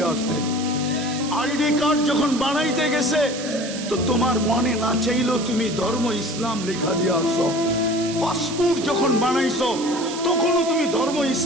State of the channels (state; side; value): noise; right; hiss, 10 dB below the sound